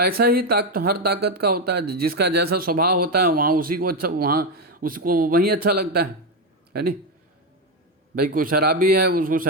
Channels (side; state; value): both; normal; correlation 0.09